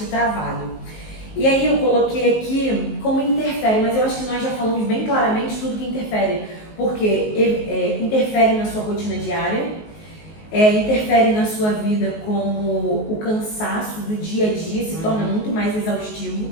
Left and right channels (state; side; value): late; right; 19 ms